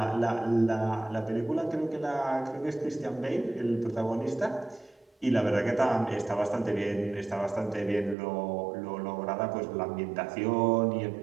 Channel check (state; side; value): drops out; left; at 8.2 s